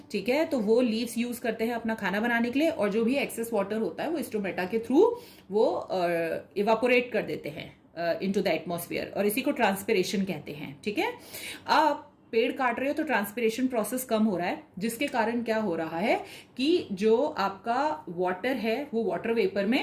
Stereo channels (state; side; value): identical; both; correlation 1.00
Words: ठीक है, तो वो लीव्स यूज करते हैं अपना खाना बनाने के लिए, और जो भी एक्सेस वाटर होता है वो स्टोमेटा के थ्रू वो इवापोरेट कर देते हैं इनटू द एटमॉस्फेयर, और इसी को ट्रांसपिरेशन कहते हैं, ठीक है। अब पेड़ काट रहे हो तो ट्रांसपिरेशन प्रोसेस कम हो रहा है, जिसके कारण क्या हो रहा है कि जो आपका वाटर है वो वाटर वेपर